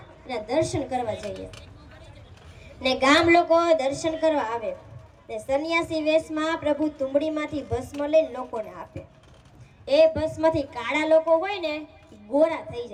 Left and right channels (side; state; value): both; identical; correlation 1.00